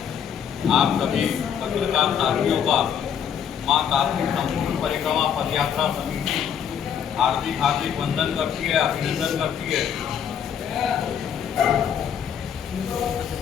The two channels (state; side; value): quieter; right; 8.4 dB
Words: आप सभी पत्रकार साथियों का मां कार्तिक संपूर्ण परिक्रमा पदयात्रा समिति हार्दिक हार्दिक वंदन करती है, अभिनंदन करती है।